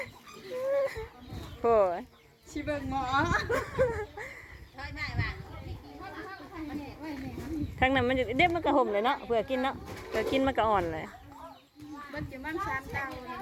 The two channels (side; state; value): both; identical; correlation 1.00